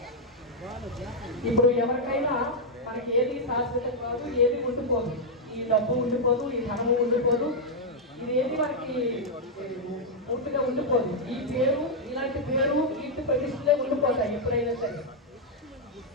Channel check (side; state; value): both; normal; correlation -0.03